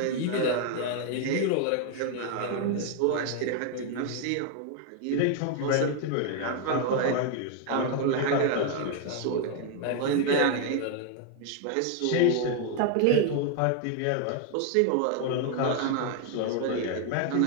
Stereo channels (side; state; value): both; different; correlation 0.00